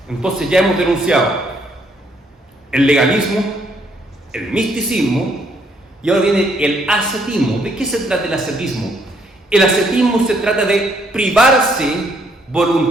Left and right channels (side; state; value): both; normal; correlation 0.69